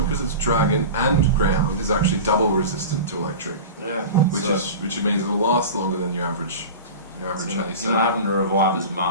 because it's dragon and ground, is actually double resistant to electric. Yeah. Which means it'll last longer than your average. You're not having to revive as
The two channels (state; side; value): inverted; both; correlation -0.32